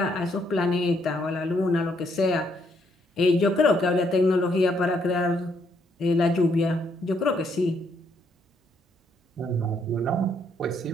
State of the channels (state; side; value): normal; both; correlation 0.72